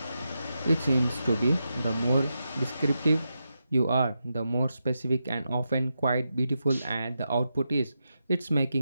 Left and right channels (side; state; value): both; inverted; correlation -0.87